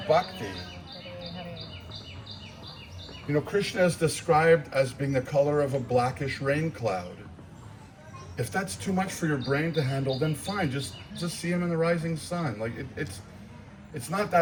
bhakti. You know, Krishna is described as being the color of a blackish rain cloud. If that's too much for your brain to handle, then fine, just see him in the rising sun. Like it's not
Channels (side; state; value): both; identical; correlation 1.00